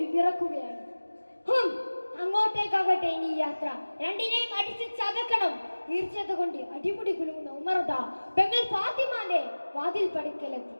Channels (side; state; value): both; inverted; correlation -1.00